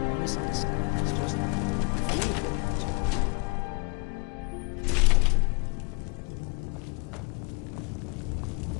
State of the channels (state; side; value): quieter; right; 32.2 dB